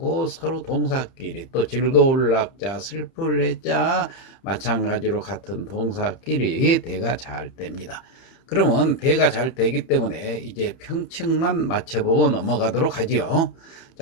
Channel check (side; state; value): right; late; 30 ms